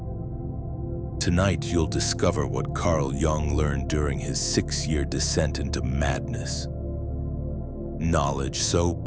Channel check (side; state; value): both; identical; correlation 1.00